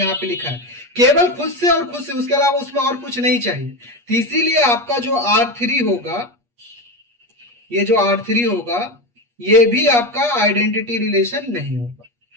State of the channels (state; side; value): late; left; 8.4 ms